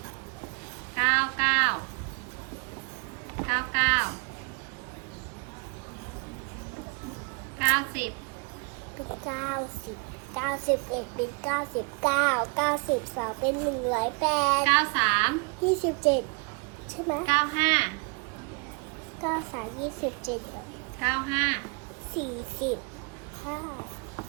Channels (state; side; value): quieter; left; 32.3 dB